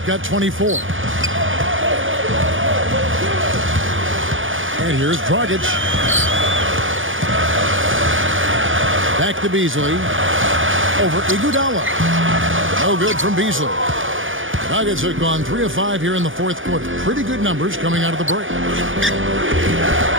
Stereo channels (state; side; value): late; left; 0.57 ms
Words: 24. And here's Dragic. Back to Beasley. Over Iguodala. No good from Beasley. Nuggets have gone 3 of 5 here in the fourth quarter. Pretty good numbers coming out of the break.